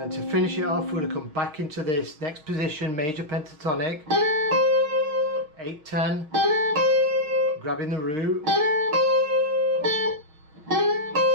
then to finish it off, we're going to come back into this next position, major pentatonic, 8/10, grabbing the root,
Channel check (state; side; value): late; left; 6.4 ms